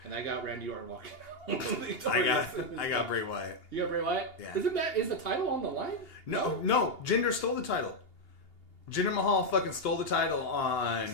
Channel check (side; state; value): right; late; 2.8 ms